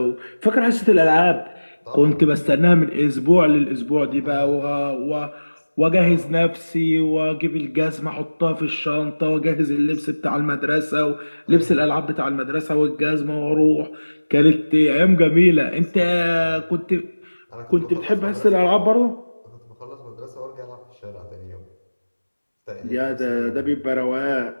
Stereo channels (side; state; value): both; inverted; correlation -1.00